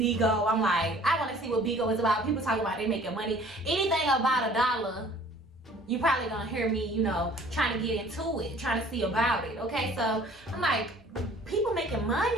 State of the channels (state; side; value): normal; both; correlation 0.52